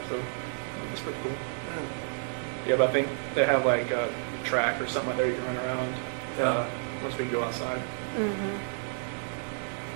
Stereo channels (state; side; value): silent; left; digital silence